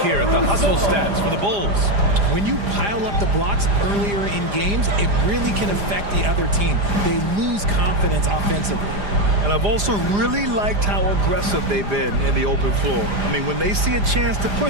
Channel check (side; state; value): left; late; 4.9 ms